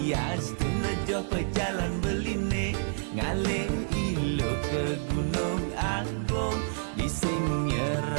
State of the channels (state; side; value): silent; left; 59 dB below the other